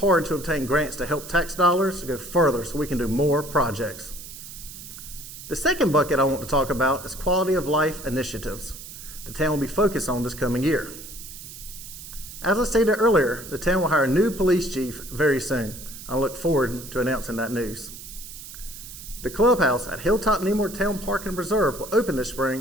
to obtain grants to help tax dollars go further so we can do more projects. The second bucket I want to talk about is quality of life initiatives the town will be focused on this coming year. As I stated earlier, the town will hire a new police chief very soon. I look forward to announcing that news. The clubhouse at Hilltop Neymar Town Park and Preserve will open this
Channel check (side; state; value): right; noise; hiss, 13 dB below the sound